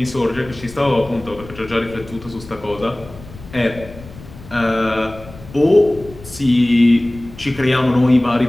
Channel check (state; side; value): noise; left; rumble, 18 dB below the sound